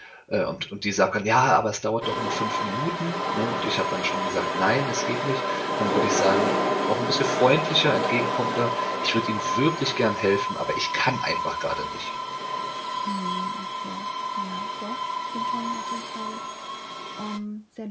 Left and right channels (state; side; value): identical; both; correlation 1.00